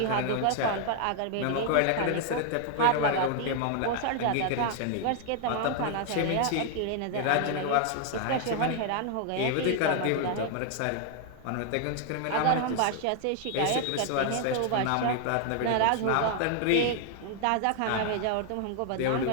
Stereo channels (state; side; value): different; both; correlation 0.00